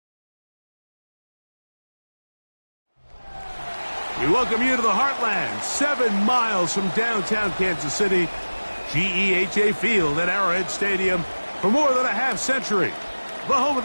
We welcome you to the Heartland, 7 miles from downtown Kansas City, GEHA Field at Arrowhead Stadium for more than a half-century, the home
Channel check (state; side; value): inverted; both; correlation -1.00